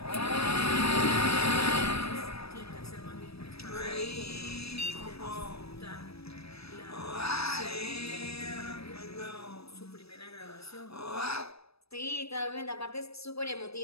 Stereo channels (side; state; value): right; late; 0.78 ms